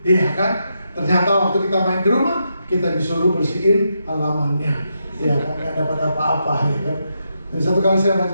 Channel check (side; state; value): both; inverted; correlation -0.83